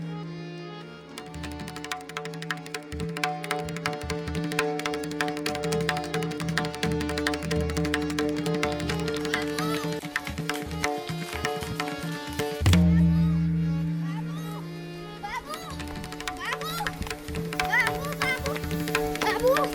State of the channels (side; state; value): both; identical; correlation 1.00